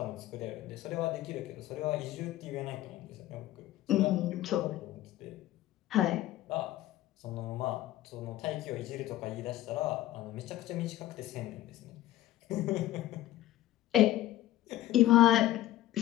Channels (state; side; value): quieter; right; 14.6 dB